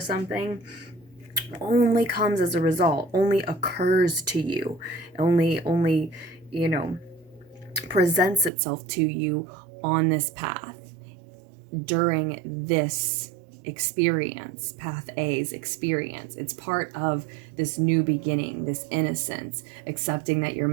only comes as a result, only occurs to you, only presents itself to you on this path during this experience, path A's experience. It's part of this new beginning, this innocence, accepting that your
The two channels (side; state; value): left; drops out; at 8.5 s